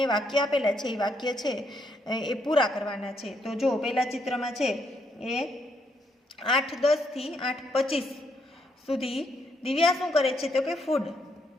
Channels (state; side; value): normal; both; correlation 0.75